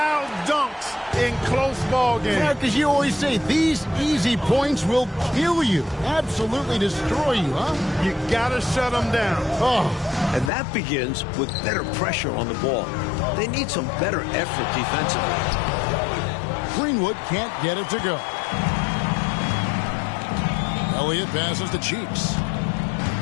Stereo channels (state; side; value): drops out; right; at 10.5 s